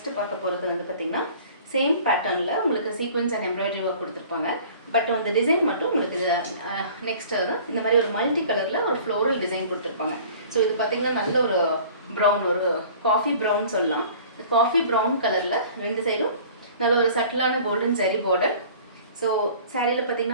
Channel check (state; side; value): inverted; both; correlation -0.47